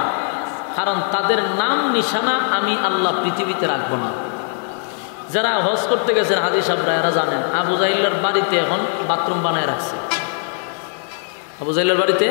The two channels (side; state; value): right; silent; 56 dB below the other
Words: কারণ তাদের নাম নিশানা আমি আল্লাহ পৃথিবীতে রাখবো না। যারা হজ করতে গেছেন হাজী সাহেবরা, এরা জানেন আবু জাহিল্লার বাড়িতে এখন বাথরুম বানায় রাখছে। আবু জাহিল্লার বাড়িতে